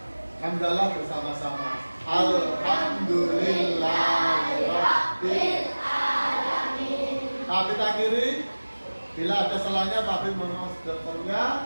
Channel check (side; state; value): both; inverted; correlation -1.00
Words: hamdalah bersama-sama. Alhamdulillahirabbil alamin. Pak kita akhiri. Bila ada salahnya, Pak Bin mohon maaf.